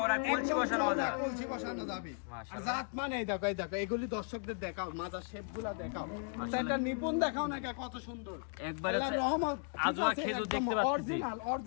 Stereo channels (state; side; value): silent; right; 54 dB below the other